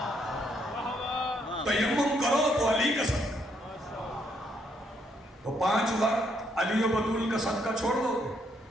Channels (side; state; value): both; normal; correlation 0.73